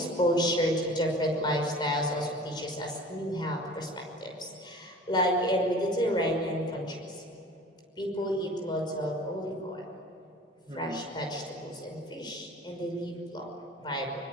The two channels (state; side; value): normal; both; correlation 0.43